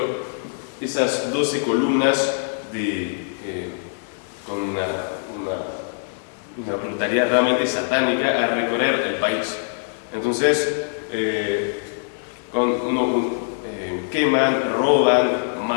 esas 12 columnas con una brutalidad realmente satánica a recorrer el país. Entonces, queman, roban,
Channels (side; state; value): right; silent; digital silence